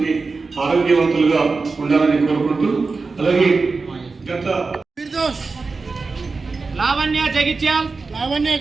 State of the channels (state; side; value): quieter; left; 4.2 dB